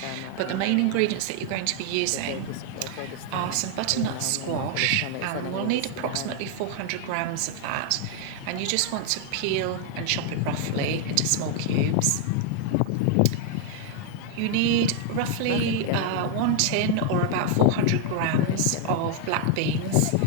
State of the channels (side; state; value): both; different; correlation 0.00